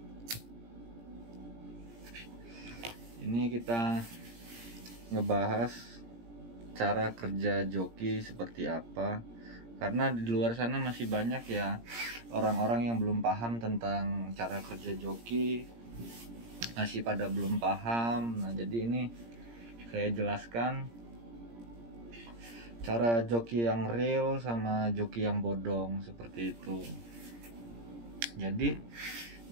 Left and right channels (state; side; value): late; left; 17 ms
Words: Ini kita ngebahas cara kerja joki seperti apa. Karena di luar sana masih banyak ya orang-orang yang belum paham tentang cara kerja joki. Masih pada belum paham. Nah, jadi ini saya jelaskan cara joki yang real sama joki yang bodong seperti itu. Jadi